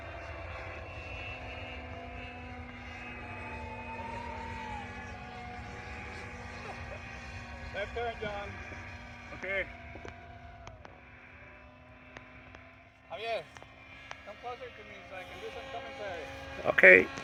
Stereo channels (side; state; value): both; identical; correlation 1.00